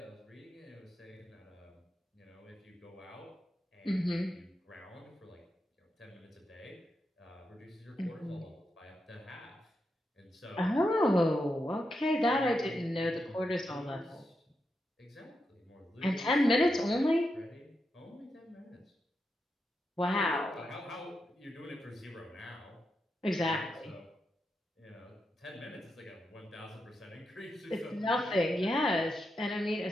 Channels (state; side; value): normal; both; correlation 0.86